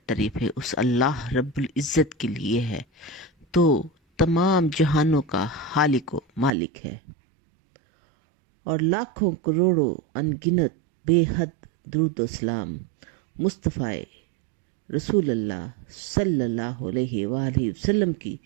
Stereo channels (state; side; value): drops out; left; at 6.5 s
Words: تعریفیں اس اللہ رب العزت کے لیے ہے تو تمام جہانوں کا خالق و مالک ہے، اور لاکھوں کروڑوں انگنت بے حد درود و سلام مصطفیٰ رسول اللہ صلی اللہ علیہ وآلہ وسلم کی